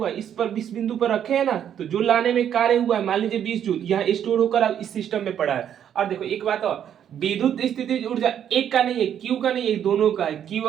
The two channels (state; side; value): quieter; left; 9.5 dB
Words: इस पर 20 बिंदु पर रखे हैं ना, तो जो लाने में कार्य हुआ है, मान लीजिए 20 जूल, यहाँ स्टोर होकर अब इस सिस्टम में पड़ा है। और देखो एक बात और, विद्युत स्थितिज ऊर्जा एक का नहीं है, क्यू का नहीं है, दोनों का है, क्यू